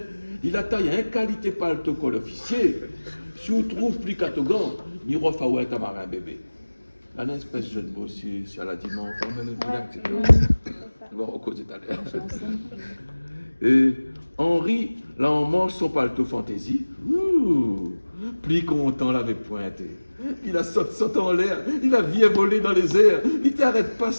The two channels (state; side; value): inverted; both; correlation -1.00